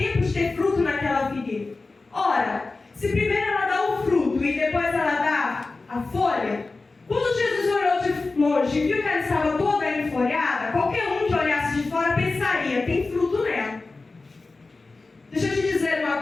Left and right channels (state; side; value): quieter; right; 3.6 dB